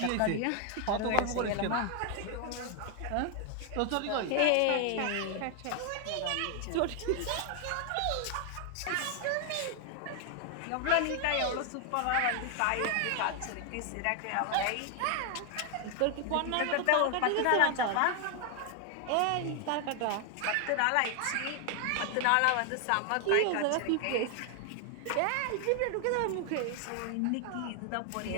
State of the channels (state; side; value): different; both; correlation 0.00